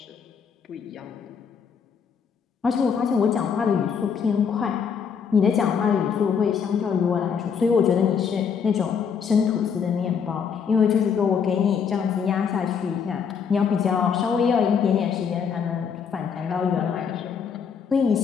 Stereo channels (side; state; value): right; quieter; 6.7 dB